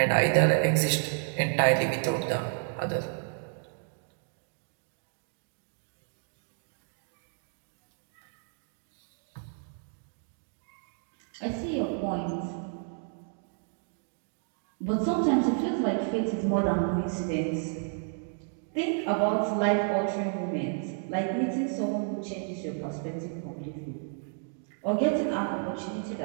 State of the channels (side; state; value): left; silent; 57 dB below the other